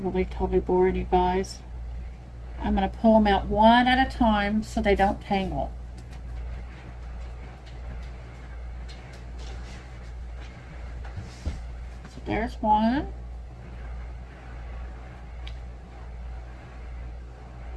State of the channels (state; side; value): identical; both; correlation 1.00